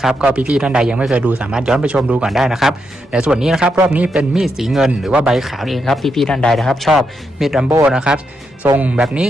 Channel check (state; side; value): normal; both; correlation 0.82